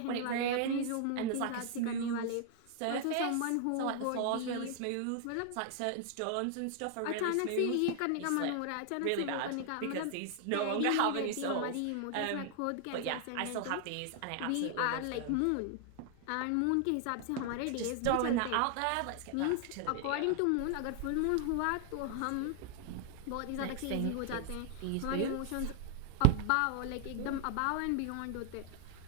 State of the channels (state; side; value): different; both; correlation 0.00